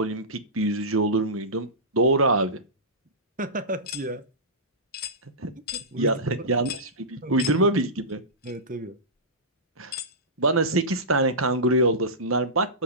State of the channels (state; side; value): normal; both; correlation -0.18